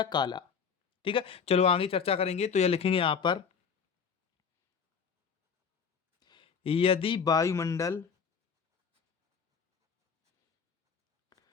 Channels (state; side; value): quieter; right; 6.3 dB